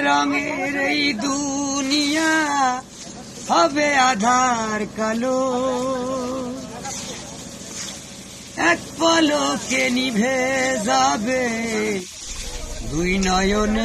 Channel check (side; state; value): both; identical; correlation 1.00